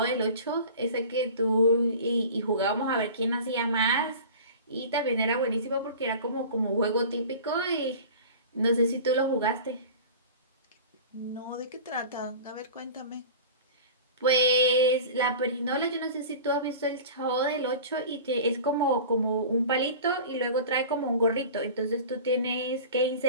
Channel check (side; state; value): both; inverted; correlation -0.37